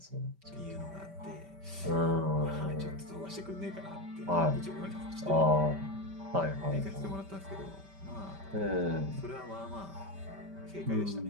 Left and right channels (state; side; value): late; left; 5.1 ms